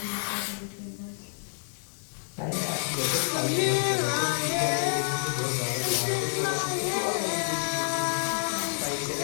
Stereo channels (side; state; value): right; silent; digital silence